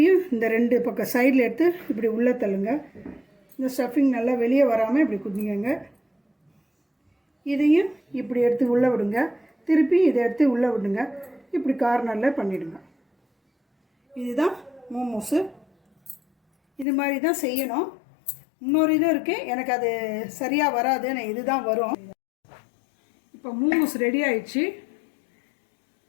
இந்த 2 பக்கம் சைடில் எடுத்து இப்படி உள்ளே தள்ளுங்க. இந்த ஸ்டஃபிங் நல்லா வெளியே வராமல் இப்படி குதிங்க. இதையும் இப்படி எடுத்து உள்ளே விடுங்க. திருப்பி இதை எடுத்து உள்ளே விடுங்க. இப்படி கார்னரில் பண்ணிவிடுங்க. இதுதான் மோமோஸு. இது மாதிரி தான் செய்யணும். இன்னொரு இதுவும் இருக்குது, எனக்கு அது சரியாக வராது, நான் இதுதான் வரும். இப்போ மோமோஸ் ரெடி ஆயிடுச்சு.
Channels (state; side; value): drops out; right; at 16.9 s